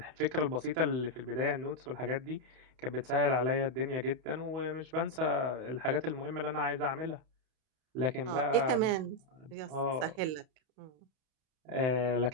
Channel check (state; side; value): late; left; 31 ms